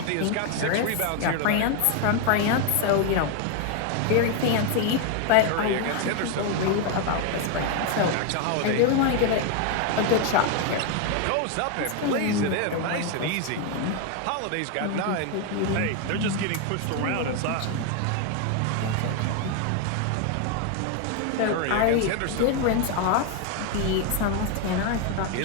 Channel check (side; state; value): both; different; correlation 0.01